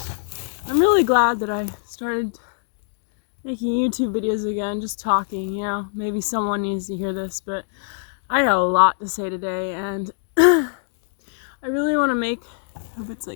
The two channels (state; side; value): silent; right; digital silence